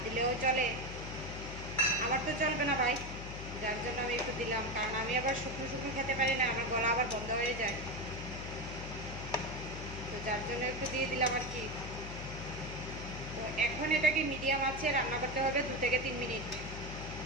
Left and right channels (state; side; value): noise; left; hum, 9 dB below the sound